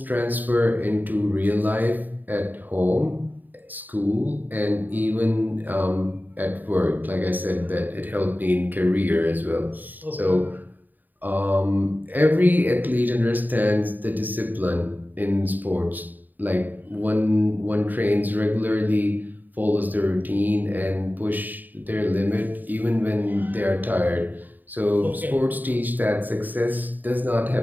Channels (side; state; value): left; late; 0.087 ms